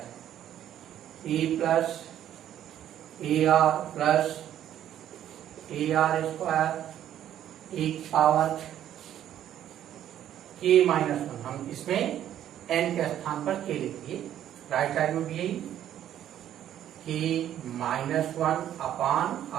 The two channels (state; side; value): quieter; left; 11.1 dB